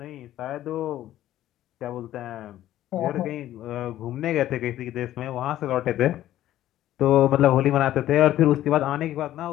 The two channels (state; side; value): quieter; right; 13.3 dB